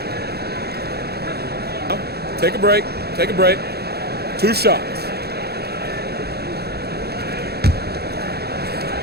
Take a break. Take a break. 2 shots.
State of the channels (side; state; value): left; late; 0.46 ms